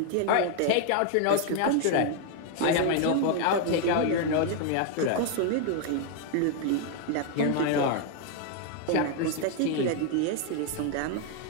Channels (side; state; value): both; different; correlation 0.00